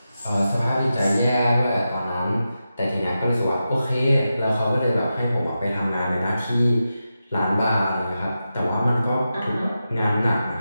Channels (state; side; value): inverted; both; correlation -0.90